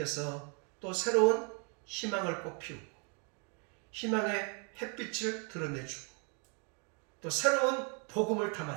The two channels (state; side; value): quieter; left; 37.1 dB